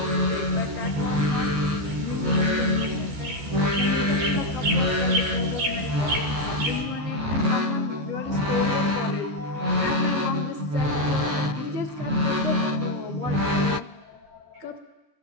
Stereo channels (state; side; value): late; left; 14 ms